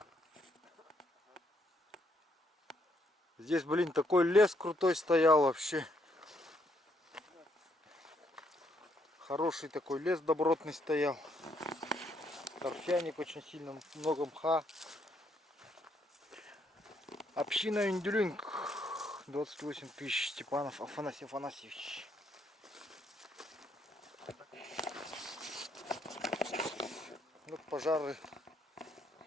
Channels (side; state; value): both; normal; correlation 0.72